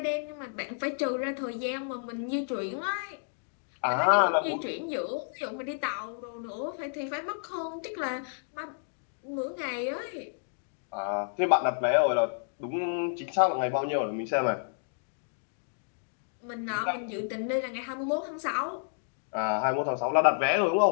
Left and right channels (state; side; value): silent; right; digital silence